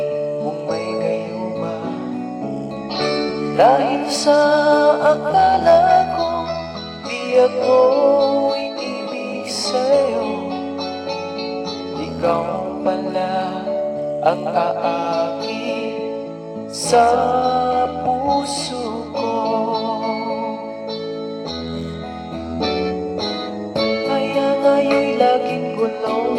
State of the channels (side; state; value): both; identical; correlation 1.00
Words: mong may gayuma. Dahil sa akala ko di ako iibig sa'yo, ikaw pala ang aakit sa puso ko. Kaya ngayon'y laging